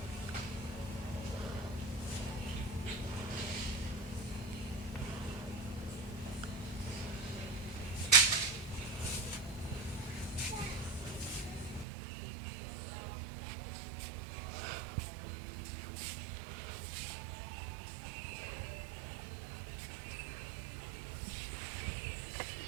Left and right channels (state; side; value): drops out; left; at 11.9 s